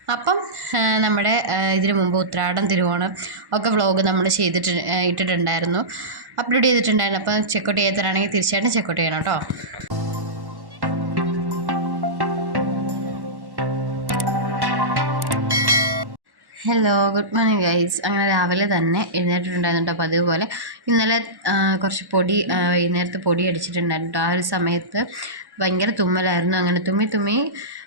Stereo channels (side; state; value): left; late; 1.1 ms